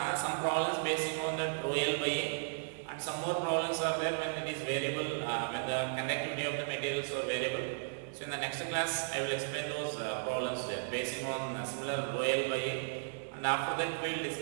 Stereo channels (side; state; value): left; silent; 54 dB below the other